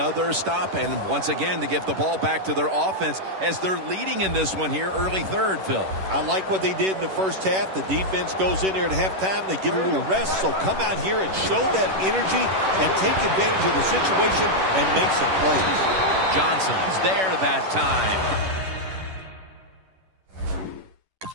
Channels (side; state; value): left; late; 10 ms